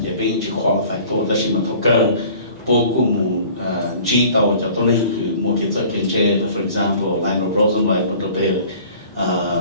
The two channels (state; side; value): inverted; both; correlation -0.48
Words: để bê yên chỉ qualify tôi đó là mà thầu cơ bố của mù chỉ tàu cho tôi nên cứ một cái giờ kiến chế for example Lionel Rosenblatt một đôi bề